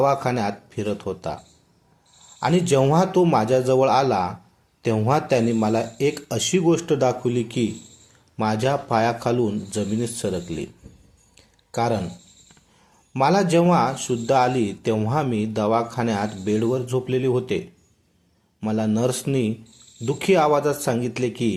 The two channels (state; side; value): identical; both; correlation 1.00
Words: फिरत होता आणि जेव्हा तो माझ्याजवळ आला तेव्हा त्याने मला एक अशी गोष्ट दाखवली की माझ्या पायाखालून जमिनीत सरकली. कारण मला जेव्हा शुद्ध आली तेव्हा मी दवाखान्यात बेडवर झोपलेले होते. मला नर्सनी दुःखी आवाजात सांगितले